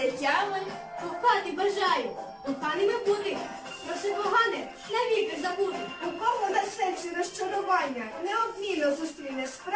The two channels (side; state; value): both; identical; correlation 1.00